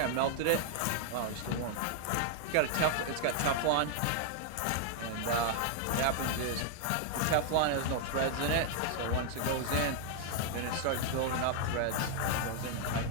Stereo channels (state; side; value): different; both; correlation 0.00